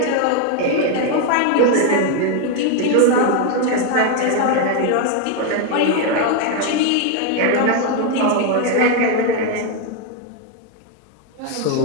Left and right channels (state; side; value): different; both; correlation 0.01